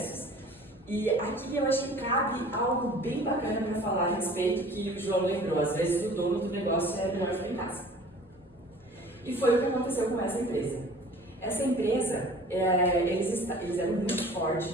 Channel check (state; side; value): normal; both; correlation 0.47